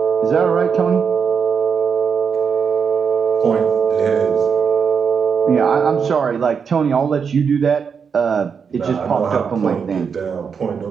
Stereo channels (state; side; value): quieter; left; 6.3 dB